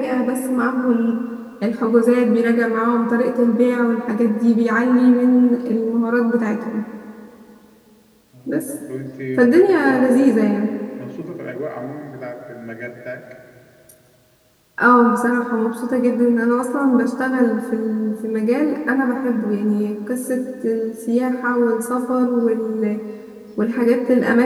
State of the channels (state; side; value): identical; both; correlation 1.00